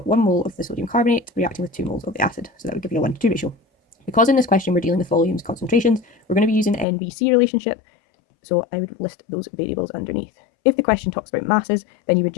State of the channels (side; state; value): right; drops out; at 6.9 s